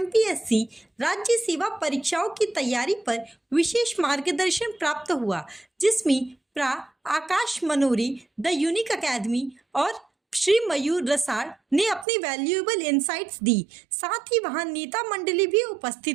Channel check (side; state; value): left; drops out; at 12.1 s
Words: राज्य सेवा परीक्षाओं की तैयारी पर विशेष मार्गदर्शन प्राप्त हुआ, जिसमें प्रा आकाश मनोरी, द यूनिक एकेडमी और श्री मयूर रसाड़ ने अपनी वैल्यूएबल इनसाइट्स दी। साथ ही वहां नेता मंडली भी